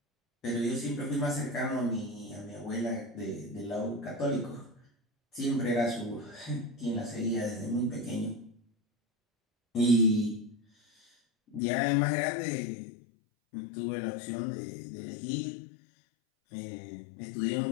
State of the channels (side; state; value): right; drops out; at 11.6 s